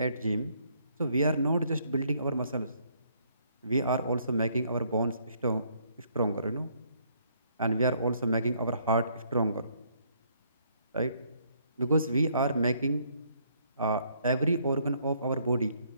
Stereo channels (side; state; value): both; inverted; correlation -0.68